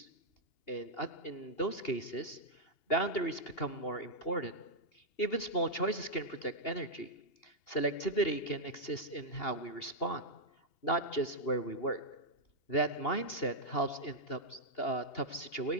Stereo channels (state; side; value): late; right; 2.8 ms